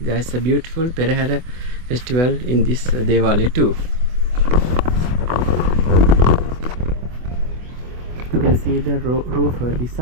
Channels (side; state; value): left; late; 24 ms